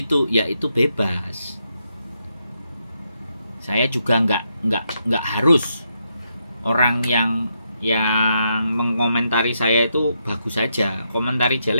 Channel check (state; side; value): inverted; both; correlation -0.80